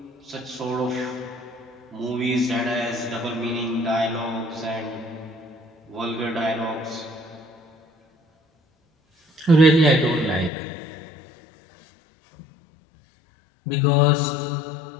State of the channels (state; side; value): drops out; right; at 10.5 s